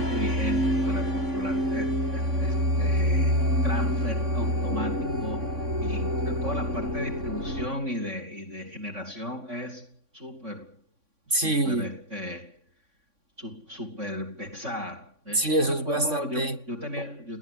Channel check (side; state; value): left; late; 3.6 ms